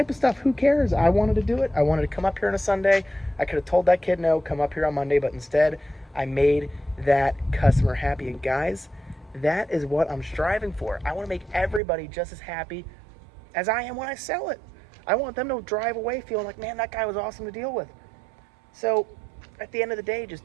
of stuff. Who cares? I wanted to do it. I wanted to come up here on a Sunday. I could have told that kid no, come up here on Monday, but instead I made that customer happy. And guys, that is what I'm striving for. I want to make everybody just as happy as I am when I sell it. I want them to drive away feeling like, man, that guy was awesome to deal with. So at the end of the day, just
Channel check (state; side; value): drops out; left; at 11.8 s